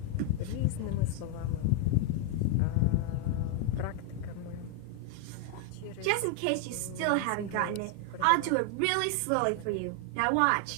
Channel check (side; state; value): both; different; correlation 0.00